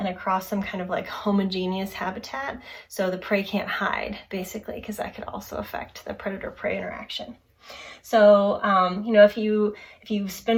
across some kind of like homogeneous habitat. So the prey can't hide basically, because that could also affect the predator-prey interaction. So, if you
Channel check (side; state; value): both; identical; correlation 1.00